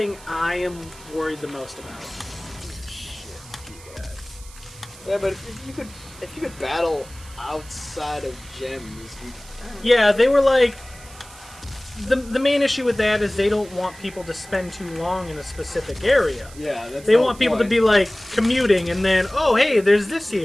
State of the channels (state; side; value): noise; right; hiss, 20 dB below the sound